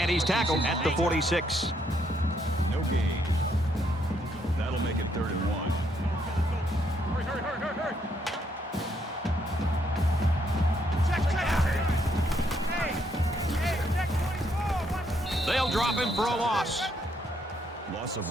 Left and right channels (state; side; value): normal; both; correlation 0.73